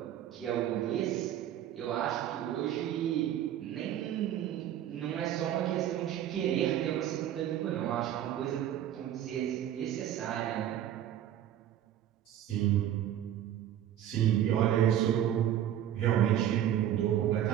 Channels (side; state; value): left; quieter; 11.2 dB